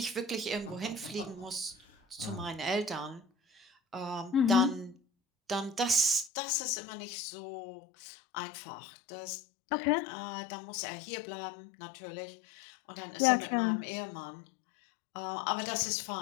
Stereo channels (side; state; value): right; drops out; at 6.3 s